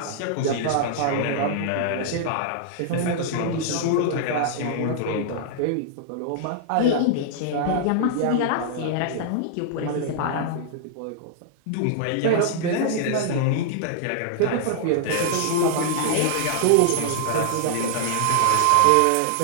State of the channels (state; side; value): different; both; correlation -0.01